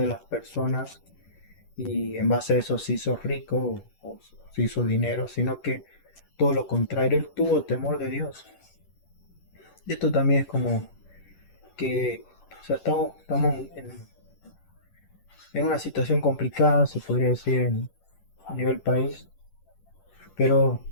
las personas y en base a eso se hizo rico o se hizo dinero, sino que todo lo contrario, él tuvo temor de Dios. Y esto también es como que, o sea, estamos en una situación complicada, se podría decir, a nivel país, pero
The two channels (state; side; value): late; right; 10 ms